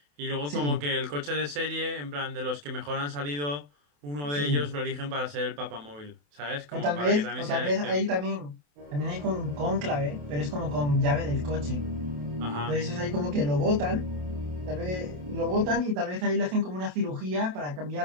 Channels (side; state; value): left; late; 27 ms